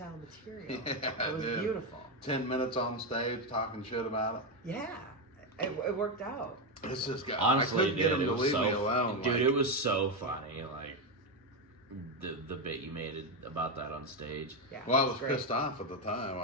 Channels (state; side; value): normal; both; correlation 0.08